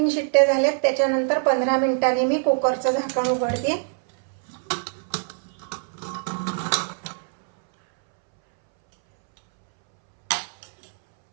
शिट्ट्या झाल्यात. त्याच्यानंतर 15 मिनिटांनी मी कुकरचं झाकण उघडते.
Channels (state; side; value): silent; left; 63 dB below the other